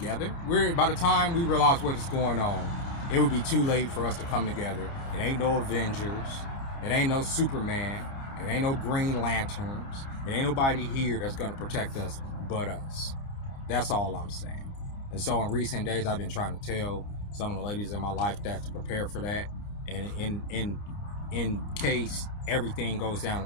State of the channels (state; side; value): late; right; 30 ms